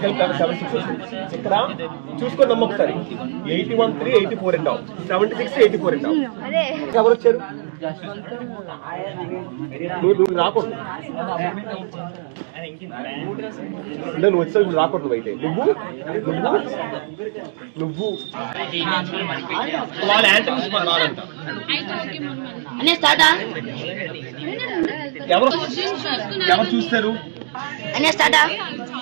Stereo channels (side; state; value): left; silent; digital silence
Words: ఇక్కడ చూసుకోండి అమ్మ ఒకసారి. 81 3 84 అంటావు, 76 84 అంటావు. ఎవరు వచ్చారు? నువ్వు రాకూడదు, అంటే నువ్వు వచ్చావు ఇప్పుడు రాకూడదు. నువ్వు అయితే నువ్వు వాళ్ళ యాంటమ్స్ రాదంట. ఎవరు చూస్తారు?